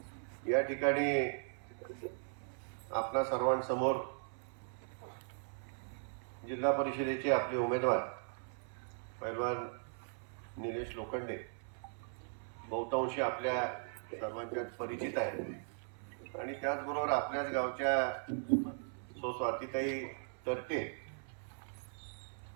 या ठिकाणी आपल्या सर्वांसमोर जिल्हा परिषदेचे आपले उमेदवार पैलवान निलेश लोखंडे बहुतांशी आपल्या सर्वांच्यात परिचित आहेत आणि त्याचबरोबर आपल्याच गावच्या स्वातीताई तरते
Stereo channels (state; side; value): silent; left; 52 dB below the other